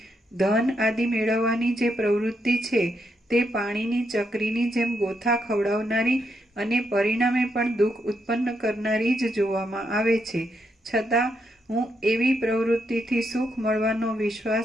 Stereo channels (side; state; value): both; normal; correlation 0.80